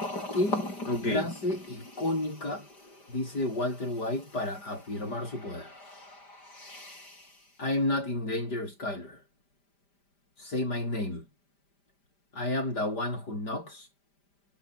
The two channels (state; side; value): late; right; 5.0 ms